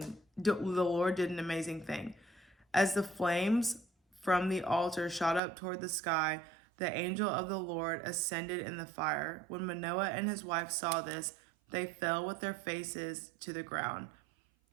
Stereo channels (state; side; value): drops out; left; at 5.4 s